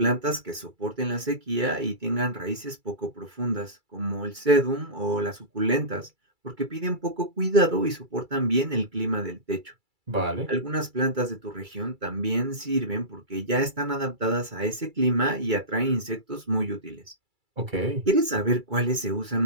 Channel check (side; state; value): left; late; 2.3 ms